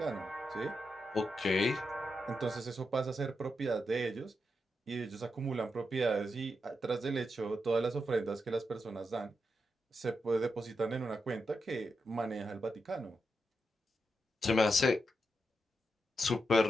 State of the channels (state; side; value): normal; both; correlation 0.86